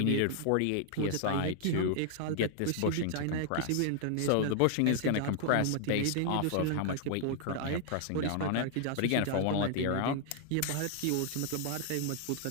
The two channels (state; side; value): different; both; correlation 0.00